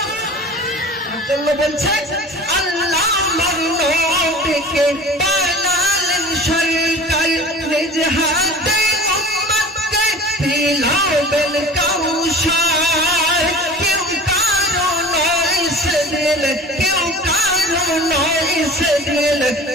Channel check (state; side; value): normal; both; correlation 0.39